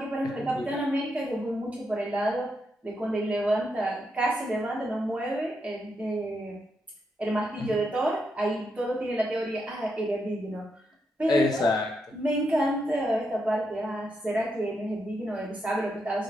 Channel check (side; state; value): both; normal; correlation 0.82